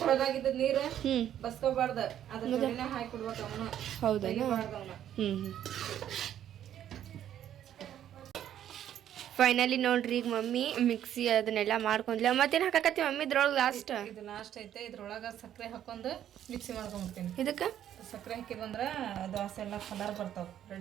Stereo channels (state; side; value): quieter; left; 10.8 dB